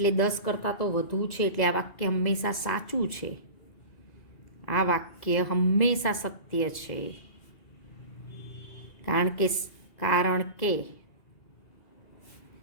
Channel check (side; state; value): right; late; 2.0 ms